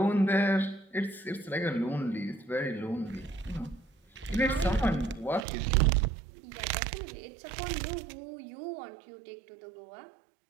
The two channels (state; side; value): drops out; left; at 5.5 s